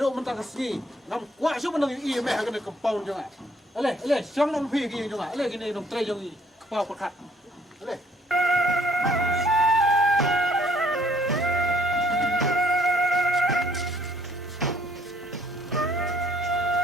mentang sini. Nam kuat su bandang i me hagan compound jonga. Ale, siang nam phi ki jonga. Ale kini nam trai jong i kepau perkat. Ale.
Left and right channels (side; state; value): both; normal; correlation 0.63